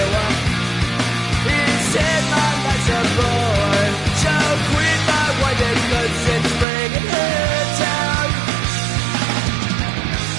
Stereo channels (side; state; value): left; drops out; at 6.7 s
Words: he said my life's a bore. So quit my wife because it's bringing her down.